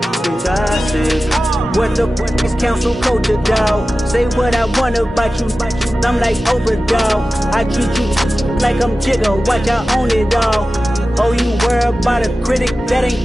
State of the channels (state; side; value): normal; both; correlation 0.95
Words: You gossip. What the fuck is council culture, dog? Say what I want about you. I'm like overdog. I treat you like I'm Jigga. Watch I own it all. Oh, you worry about a critic? That